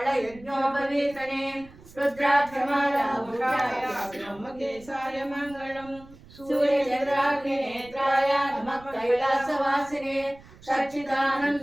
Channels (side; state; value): right; noise; rumble, 22 dB below the sound